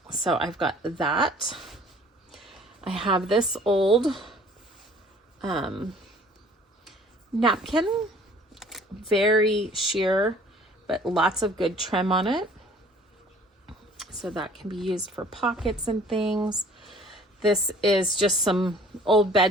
So I've got that. I have this old napkin, very sheer, but lots of good trim on it. So that can be used for pockets and things. This is just some old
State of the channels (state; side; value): normal; both; correlation 0.52